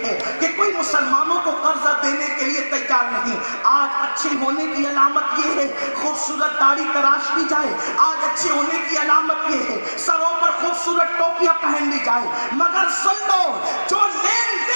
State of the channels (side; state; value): both; inverted; correlation -1.00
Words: ہے کہ کوئی مسلمانوں کو قرضہ دینے کے لیے تیار نہیں. آج اچھے ہونے کی علامت یہ ہے خوبصورت داڑھی تراش لی جائے, آج اچھے ہونے کی علامت یہ ہے سروں پر خوبصورت ٹوپیاں پہن لی جائے, مگر سن لو جو لین